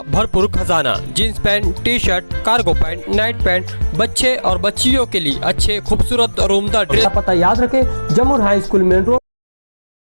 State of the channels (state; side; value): inverted; both; correlation -1.00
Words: भरपूर खजाना। Jeans pant, T shirt, cargo pant, night pant, बच्चे और बच्चियों के लिए अच्छे खूबसूरत और उम्दा ड्रेस। पता याद रखें, जमुर हाई स्कूल मेन रोड।